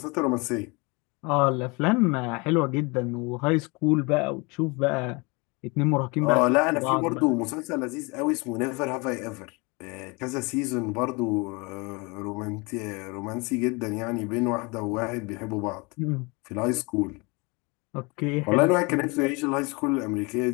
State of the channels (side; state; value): right; quieter; 28.0 dB